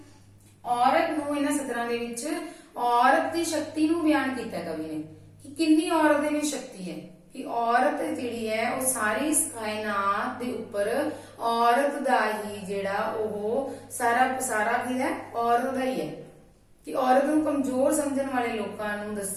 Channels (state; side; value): identical; both; correlation 1.00